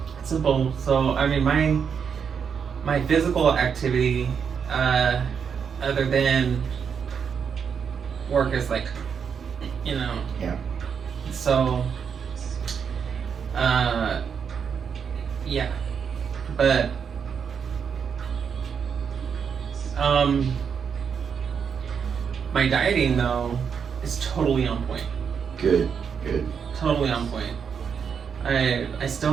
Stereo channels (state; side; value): quieter; left; 6.8 dB